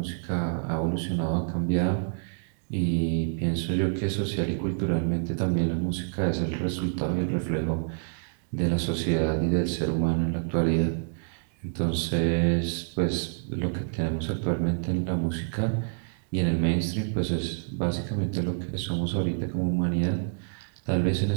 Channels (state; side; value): silent; left; digital silence